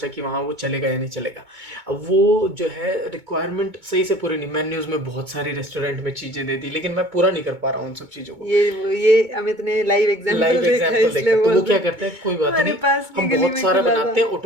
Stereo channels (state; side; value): late; left; 2.2 ms